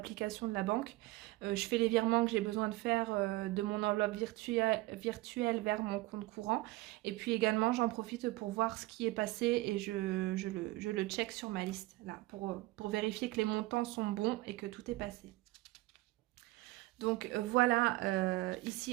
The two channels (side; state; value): left; quieter; 19.9 dB